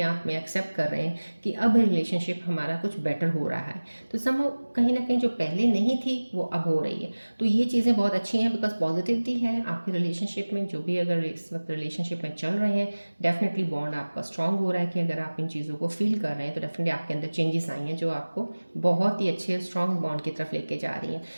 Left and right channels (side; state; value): both; inverted; correlation -1.00